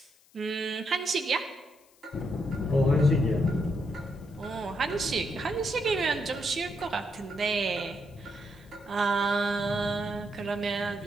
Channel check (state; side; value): noise; left; hiss, 30 dB below the sound